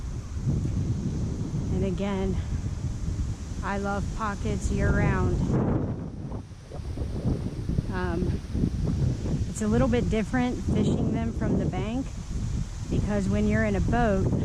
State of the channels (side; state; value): both; identical; correlation 1.00